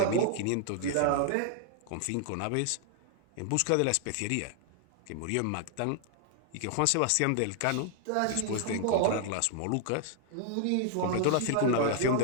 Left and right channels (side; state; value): both; different; correlation 0.00